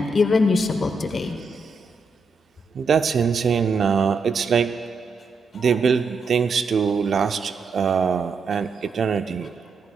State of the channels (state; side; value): quieter; left; 3.5 dB